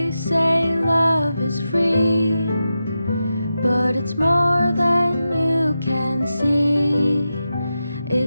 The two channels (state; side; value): inverted; both; correlation -0.90